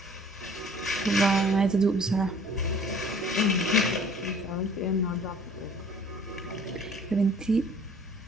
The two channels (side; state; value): both; normal; correlation 0.53